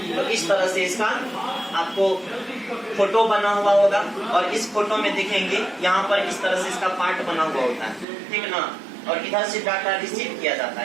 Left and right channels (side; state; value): left; drops out; at 8.1 s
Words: तो इस तरह से इसका आपको फोटो बना हुआ होगा, और इस फोटो में देखेंगे यहाँ पर इस तरह से इसका पार्ट बना हुआ होता है, ठीक ना। और इधर से डाटा रिसीव किया जाता